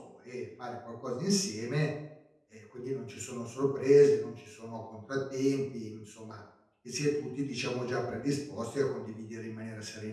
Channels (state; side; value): identical; both; correlation 1.00